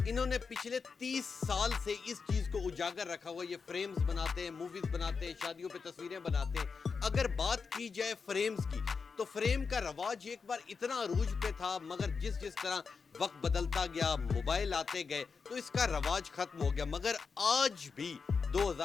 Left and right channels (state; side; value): quieter; right; 5.2 dB